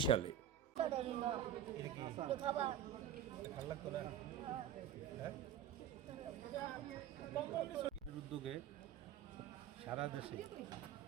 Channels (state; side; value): quieter; left; 9.5 dB